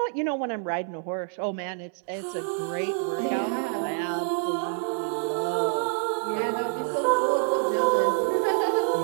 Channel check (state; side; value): silent; left; 60 dB below the other